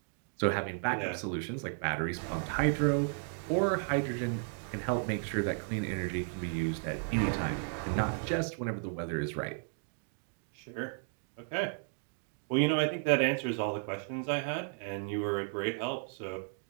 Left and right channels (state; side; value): silent; left; 55 dB below the other